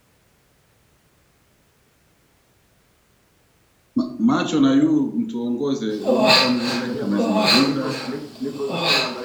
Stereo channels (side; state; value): both; identical; correlation 1.00